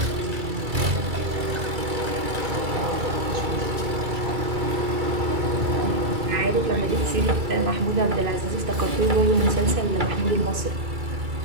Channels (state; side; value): late; left; 2.3 ms